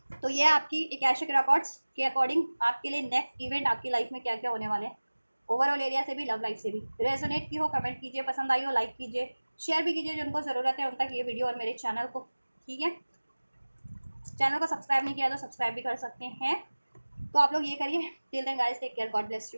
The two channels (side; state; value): both; inverted; correlation -1.00